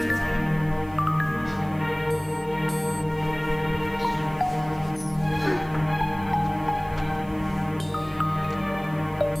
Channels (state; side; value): noise; right; hiss, 27 dB below the sound